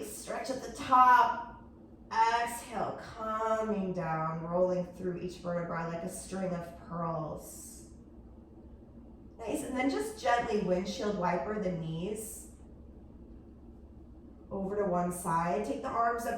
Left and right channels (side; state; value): both; identical; correlation 1.00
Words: stretch at the top. Exhale, coming down, rolling through each vertebra like a string of pearls. Nice, and then just gently windshield wiper the knees over to one side. Take the arms